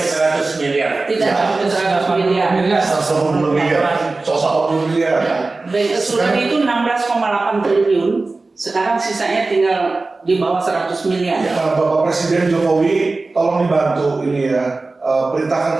miliar. Tidak sampai 100 miliar. 110 miliar. 110 miliar. Bank Assuran itu 16,8 triliun. Sekarang sisanya tinggal di bawah 100 miliar. Nah, Bapak Presiden Jokowi tolong dibantu ini ya,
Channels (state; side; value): quieter; left; 3.5 dB